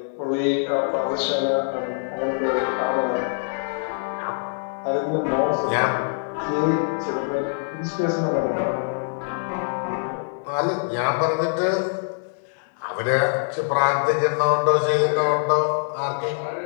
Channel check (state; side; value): silent; right; 63 dB below the other